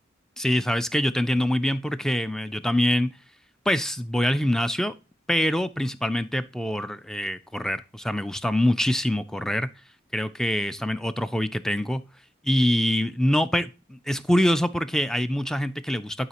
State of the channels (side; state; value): both; normal; correlation 0.93